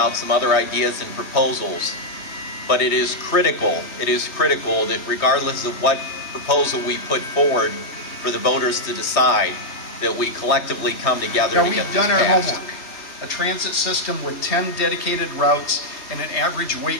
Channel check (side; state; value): right; late; 3.2 ms